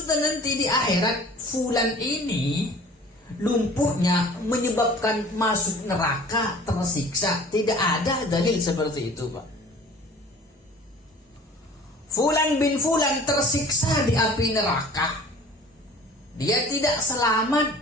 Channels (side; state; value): both; normal; correlation 0.46